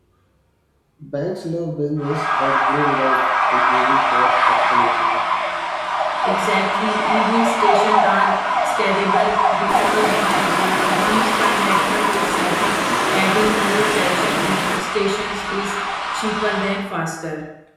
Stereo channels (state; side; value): identical; both; correlation 1.00